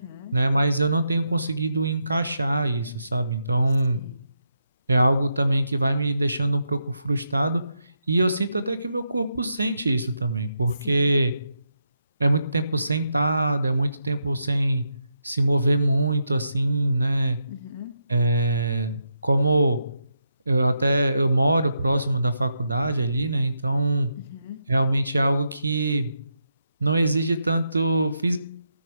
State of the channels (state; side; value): inverted; both; correlation -0.83